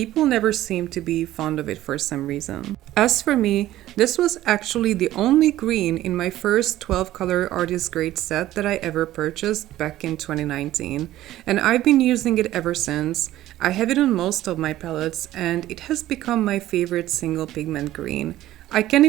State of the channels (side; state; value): left; quieter; 14.5 dB